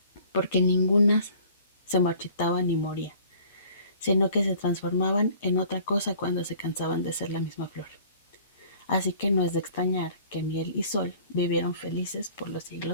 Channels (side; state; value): both; inverted; correlation -0.52